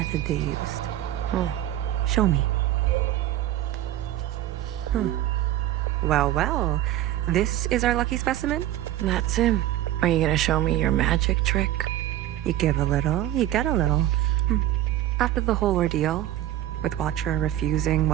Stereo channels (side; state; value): left; quieter; 13.3 dB